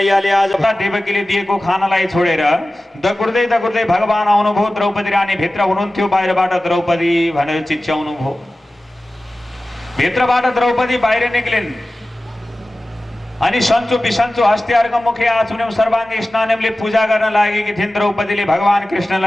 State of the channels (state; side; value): normal; both; correlation 0.96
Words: आज देवकीले दिएको खानालाई छोडेर दगुर्दै दगुर्दै भगवान आउनुभयो। द्रौपदी रानी भित्र हुनुहुन्थ्यो, बाहिरबाट द्रौपदी भनेर चिच्याउनु भयो। भित्रबाट द्रौपदी बाहिर निक्लिन् अनि सन्चो बिसन्चो हस्तियार्ग मुखे आचुन्यम सर्वाङ्गी स्नानमले पूजा गर्न लागेकी थिइन् द्रौपदीले भगवान